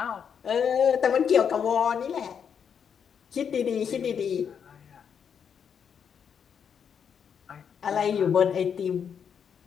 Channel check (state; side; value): quieter; right; 7.4 dB